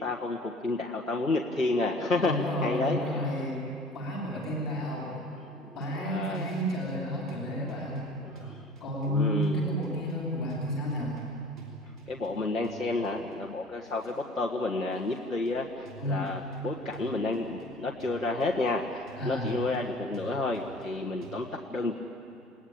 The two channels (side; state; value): both; normal; correlation 0.48